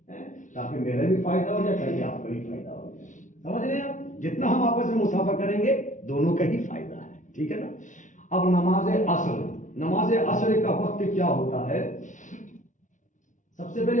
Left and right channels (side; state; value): right; late; 0.37 ms